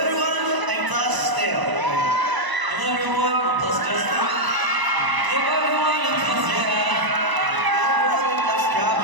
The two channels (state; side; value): late; left; 1.0 ms